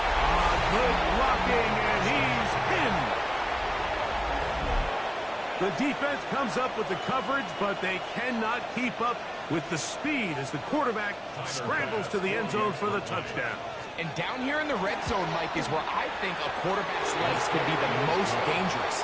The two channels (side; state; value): both; identical; correlation 1.00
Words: Good blocking, and he's in. The defense comes up with the coverage, but they cannot keep up with the speed as the quarterback scrambles to the end zone for the touchdown. And down here in the red zone, Mike, is where I think a quarterback's legs could be the most dangerous.